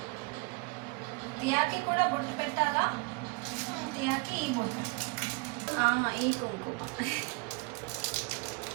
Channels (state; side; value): quieter; left; 28.9 dB